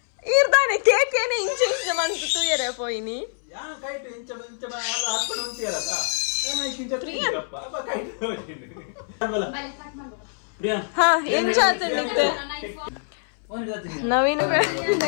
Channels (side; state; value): right; silent; 62 dB below the other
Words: ಇರ್ದಾನೆ ಕೇಕ್ ಏನೇ ಇಂಚ ಮಂತು ತೂಯರೆ ಪೋಯಿನಿ ಹಾ ಇಂಚ ಆತಂಡಿತ್ತೆ ನವೀನ